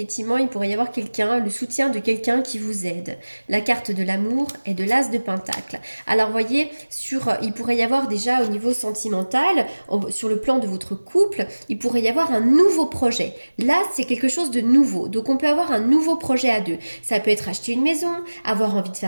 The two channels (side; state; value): both; inverted; correlation -1.00